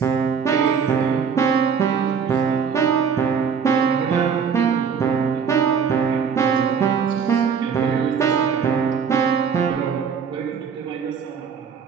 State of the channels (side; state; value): left; quieter; 6.6 dB